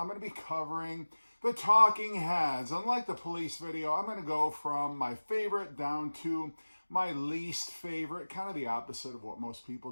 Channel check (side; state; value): both; inverted; correlation -1.00